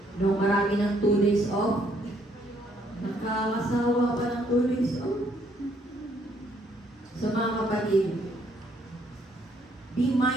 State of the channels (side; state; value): both; normal; correlation 0.68